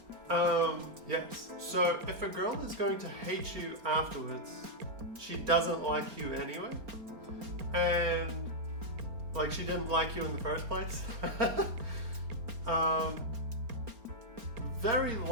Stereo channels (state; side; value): late; left; 4.3 ms